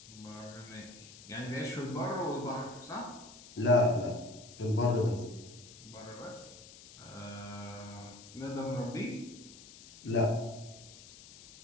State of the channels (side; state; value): left; noise; hiss, 18 dB below the sound